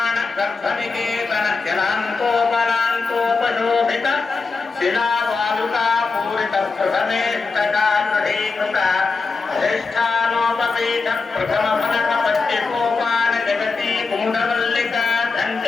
गर्भनिकेतन जलान्तोपलान्तोपशोभित शिलावालुका पूरित प्रथमेष्टकागृहीकृत अधिष्ठानोपपीठ प्रथम फलक पट्टिकोपान जगती कुण्डवल्लिका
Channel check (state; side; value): quieter; right; 4.4 dB